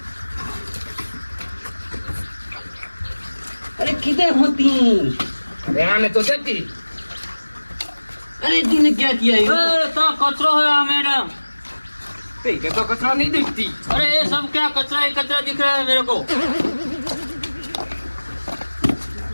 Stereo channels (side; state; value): both; inverted; correlation -1.00